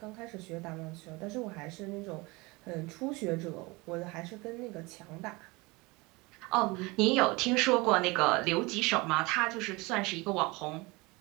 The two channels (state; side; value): quieter; left; 24.5 dB